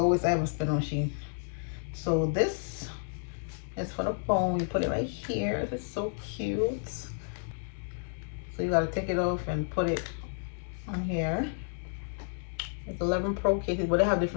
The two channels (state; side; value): silent; right; digital silence